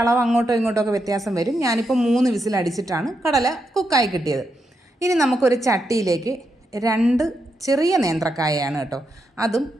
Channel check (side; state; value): both; normal; correlation 0.83